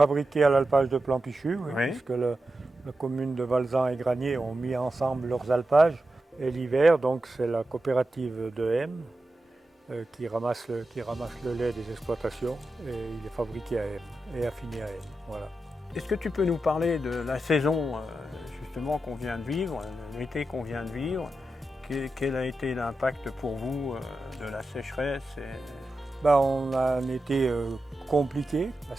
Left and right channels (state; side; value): normal; both; correlation 0.90